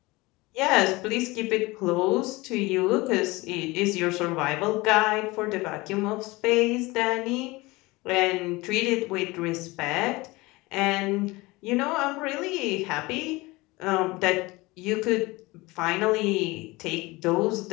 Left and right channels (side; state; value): right; quieter; 22.2 dB